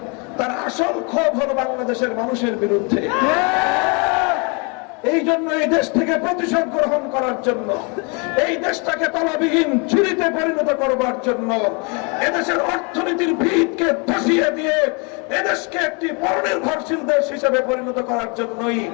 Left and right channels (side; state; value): right; quieter; 32.8 dB